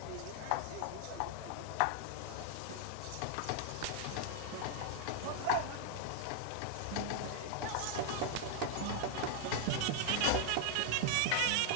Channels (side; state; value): both; different; correlation 0.00